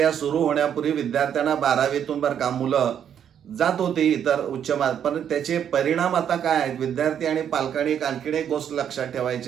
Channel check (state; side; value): quieter; left; 8.9 dB